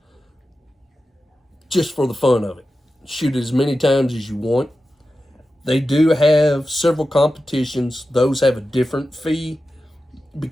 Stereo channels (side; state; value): both; normal; correlation 0.92